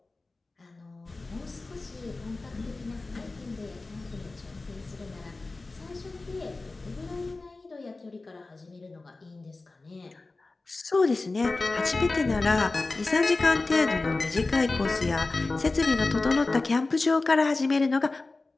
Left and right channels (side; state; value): right; quieter; 3.4 dB